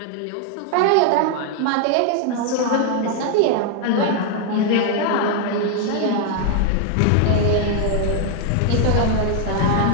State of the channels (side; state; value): both; different; correlation 0.00